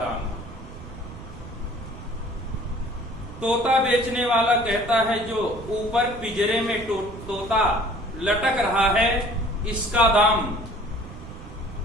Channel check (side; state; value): right; noise; rumble, 14 dB below the sound